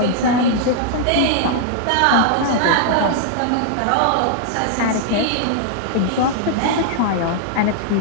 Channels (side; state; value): both; different; correlation -0.01